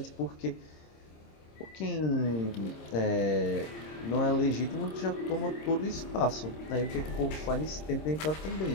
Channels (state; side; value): late; right; 26 ms